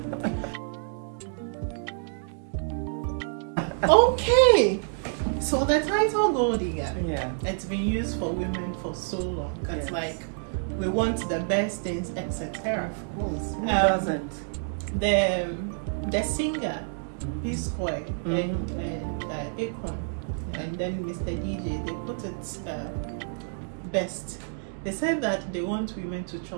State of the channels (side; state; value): left; silent; digital silence